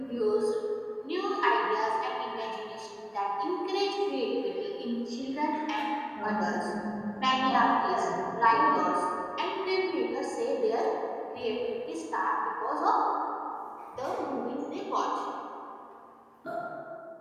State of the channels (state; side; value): identical; both; correlation 1.00